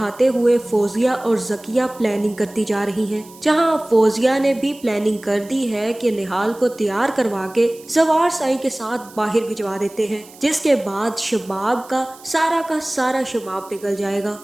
हुए फौजिया और जकिया प्लानिंग करती जा रही हैं। जहां फौजिया ने भी प्लानिंग कर दी है कि निहाल को तैयार करवा के जवार साई के साथ बाहर भिजवा देते हैं, जिसके बाद शबाब का सारा शबाब पिघल जाएगा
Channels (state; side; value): noise; right; hiss, 22 dB below the sound